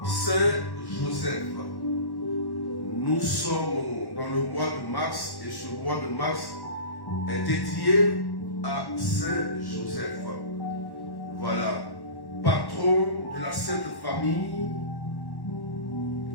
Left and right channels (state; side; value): late; right; 1.1 ms